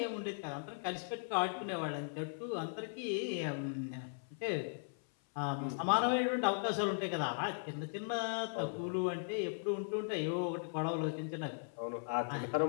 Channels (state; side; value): silent; right; 52 dB below the other